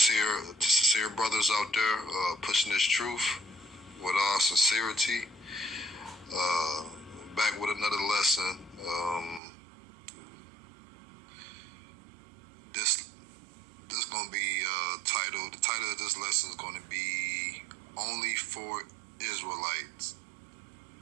brothers out there pushing this truth with all sincerity. Back with another lesson. This gonna be titled. The title of this lesson is going to be "Only for Israelites."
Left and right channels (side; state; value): left; drops out; at 9.4 s